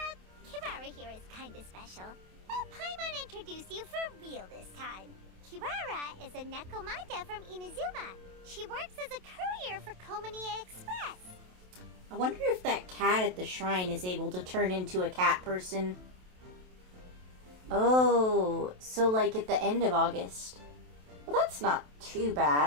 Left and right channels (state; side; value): late; left; 27 ms